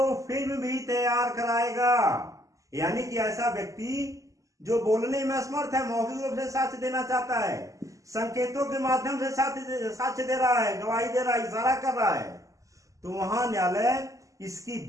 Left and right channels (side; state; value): left; late; 0.16 ms